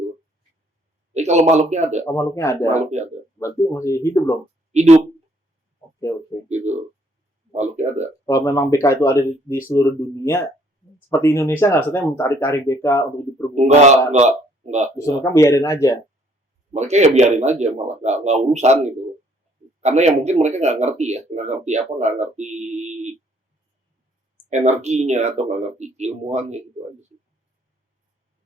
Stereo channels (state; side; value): normal; both; correlation 0.64